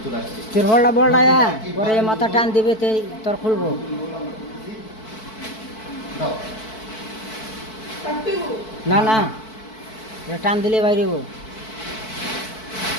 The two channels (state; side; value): late; right; 4.5 ms